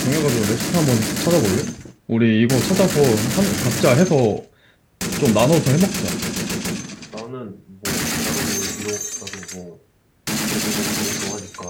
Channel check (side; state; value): both; identical; correlation 1.00